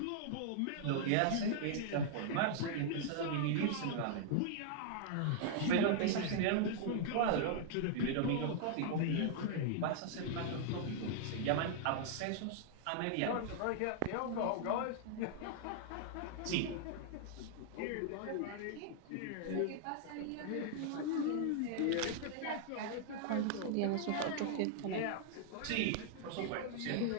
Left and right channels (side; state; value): both; different; correlation -0.01